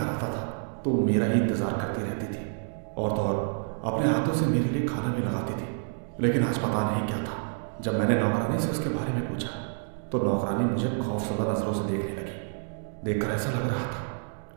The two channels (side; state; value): left; silent; digital silence